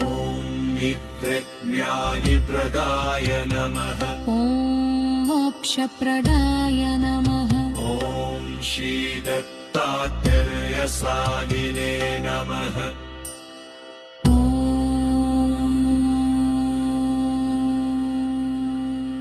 नित्यज्ञानिप्रदाय नमः ॐ मोक्षप्रदाय नमः ॐ श्रीदत्तात्रेयसागिने नमः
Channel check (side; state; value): both; identical; correlation 1.00